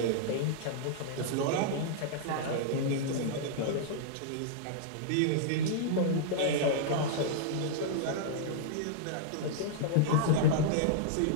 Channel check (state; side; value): different; both; correlation -0.02